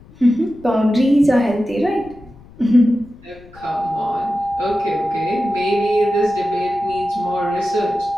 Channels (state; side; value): noise; left; rumble, 23 dB below the sound